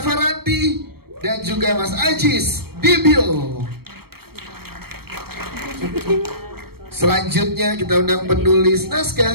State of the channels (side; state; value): left; late; 0.95 ms